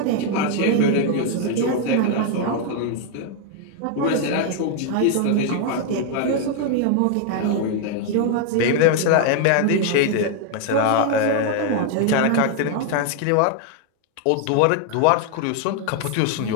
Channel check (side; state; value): both; different; correlation 0.00